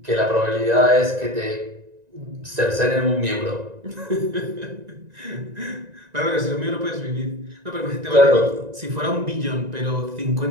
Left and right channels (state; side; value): late; left; 1.9 ms